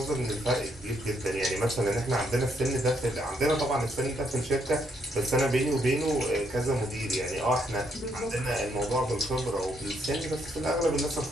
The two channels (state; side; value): normal; both; correlation 0.73